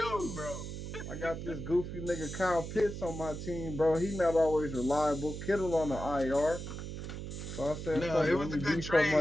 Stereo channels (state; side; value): noise; right; hum, 7 dB below the sound